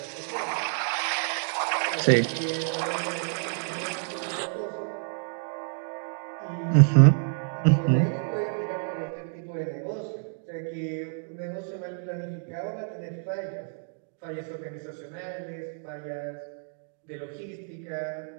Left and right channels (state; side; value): silent; left; 59 dB below the other